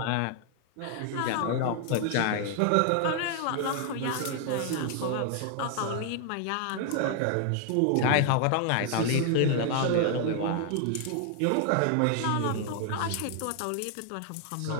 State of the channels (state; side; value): different; both; correlation 0.00